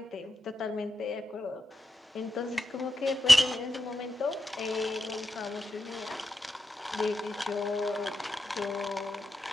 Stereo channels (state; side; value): normal; both; correlation 0.89